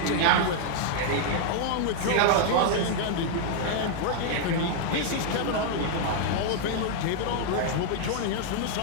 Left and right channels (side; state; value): both; different; correlation 0.00